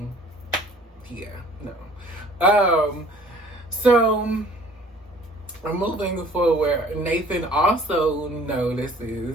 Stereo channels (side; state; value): both; normal; correlation 0.52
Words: yeah, no. So moving forward, Nathan also